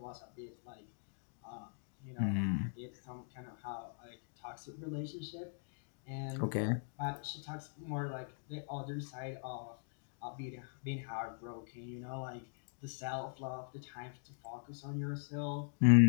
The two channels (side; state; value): right; silent; digital silence